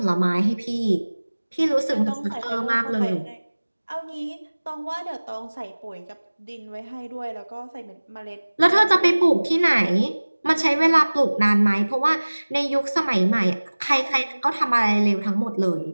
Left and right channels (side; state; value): both; inverted; correlation -1.00